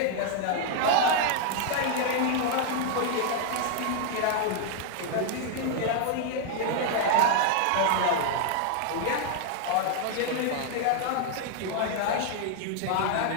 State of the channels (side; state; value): both; different; correlation 0.00